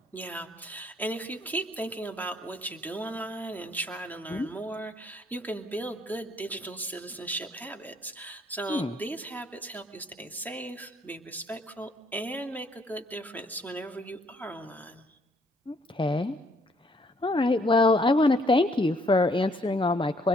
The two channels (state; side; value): normal; both; correlation 0.66